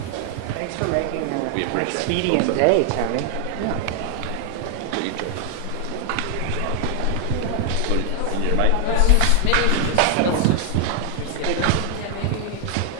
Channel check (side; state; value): both; different; correlation 0.00